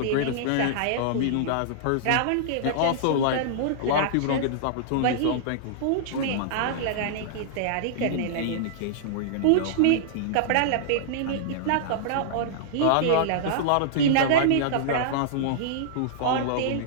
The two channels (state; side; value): different; both; correlation -0.02